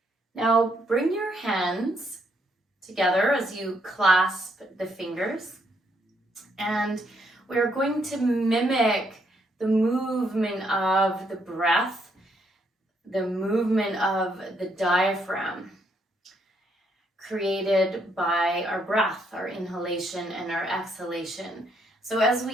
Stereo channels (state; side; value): normal; both; correlation 0.73